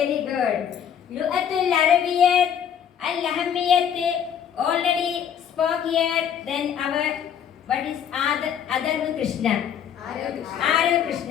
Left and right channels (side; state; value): right; quieter; 8.6 dB